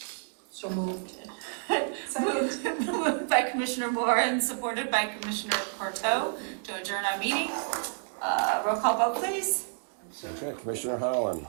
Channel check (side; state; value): left; silent; 58 dB below the other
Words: So moved. Moved by Commissioner Moore and supported by Commissioner Courteau to adjourn our meeting. Roll call vote, please. Okay, Commissioner Holland,